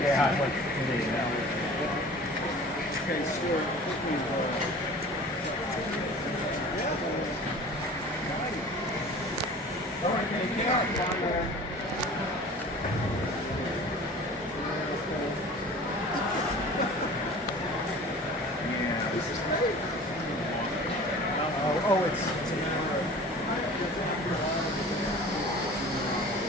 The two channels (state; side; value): normal; both; correlation 0.42